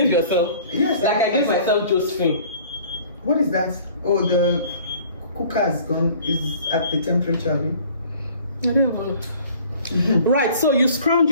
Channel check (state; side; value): inverted; both; correlation -0.51